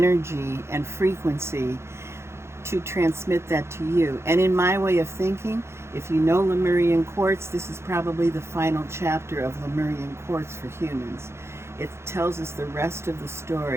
and frequency to transmit that to you. And in my way of thinking, if you know Lemurian quartz, this is probably the final chapter of Lemurian quartz for humans. It tells us the rest of the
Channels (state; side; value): late; left; 0.13 ms